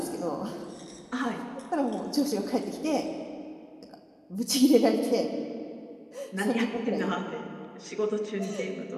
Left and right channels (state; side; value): identical; both; correlation 1.00